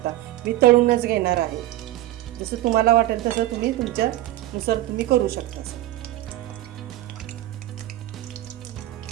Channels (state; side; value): quieter; left; 15.0 dB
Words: मी तळूनच घेणार आहे. जसं तुम्हाला वाटेल तसं तुम्ही तुमच्यानुसार तुम्ही करू शकता.